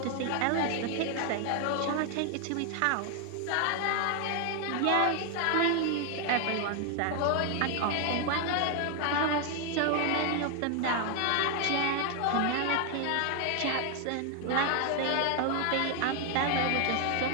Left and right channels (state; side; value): different; both; correlation 0.00